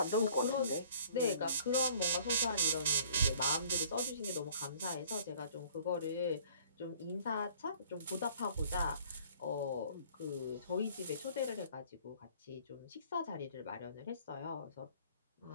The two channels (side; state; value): both; inverted; correlation -0.55